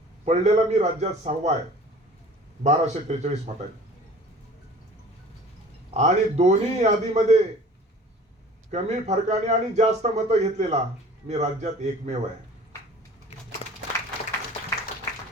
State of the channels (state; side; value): normal; both; correlation 0.46